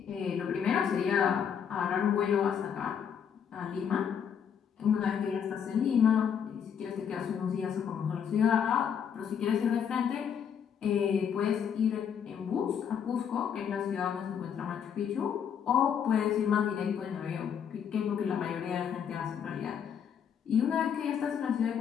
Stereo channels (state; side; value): quieter; right; 7.9 dB